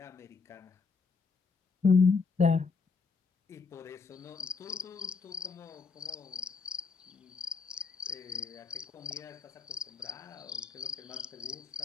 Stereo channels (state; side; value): quieter; right; 4.8 dB